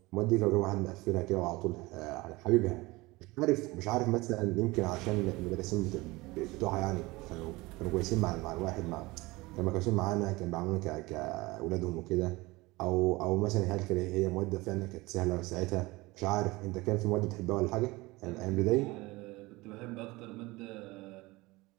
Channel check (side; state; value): left; quieter; 21.8 dB